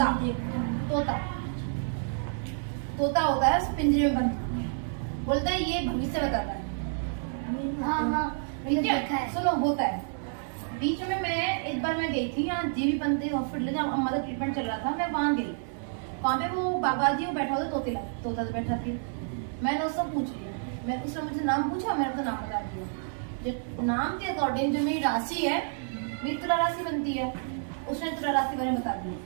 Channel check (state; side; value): silent; left; digital silence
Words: तोता तोता होता है पिंजरे में बंद, बोलता है ये भविष्य बताता है। हाँ ठीक है, सुनो होता है। बीच में मैं एक बार मैं गई थी यहाँ जीवी पंत हॉस्पिटल, जहाँ अम्मा का ट्रीटमेंट चल रहा था, मैं वहाँ गई, वहाँ पे वो बाबा जी वो बैठा हुआ तोता से बैठा थी। मैंने उससे पूछ लिया, मैं उसने मुझे नाम पूछा, मैंने उसका नाम बता दिया, जो नाम के अकॉर्डिंग जो मेरी राशि है, मेरी तुला राशि बनती है, उसने तुला राशि मैंने बता दी,